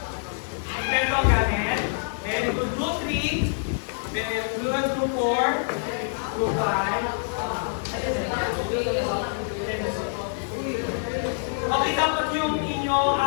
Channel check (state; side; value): silent; right; digital silence